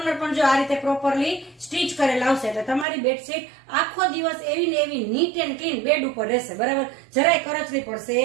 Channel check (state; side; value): drops out; left; at 2.9 s